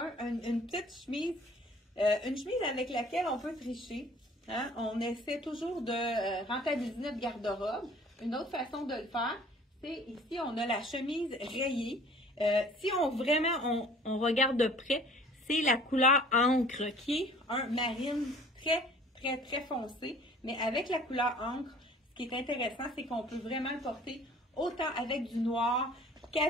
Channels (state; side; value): normal; both; correlation 0.51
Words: une petite chemise, une chemise avec laquelle on peut tricher. Hein? On essaie toujours de rentabiliser notre garde-robe. Une autre façon de le faire, c'est ici, on a la chemise rayée. Si on regarde de près, c'est la couleur encre qui est un marine très foncé. Mais avec la couleur encre, ce qui est intéressant, c'est qu'on peut vraiment le porter autant avec du noir